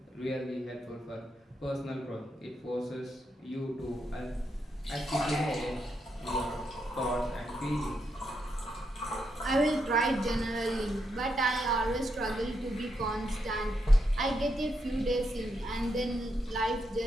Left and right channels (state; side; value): normal; both; correlation 0.81